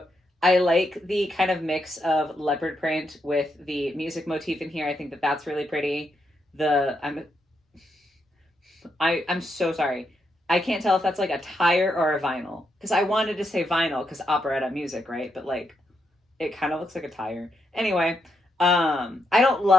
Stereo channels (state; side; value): normal; both; correlation 0.81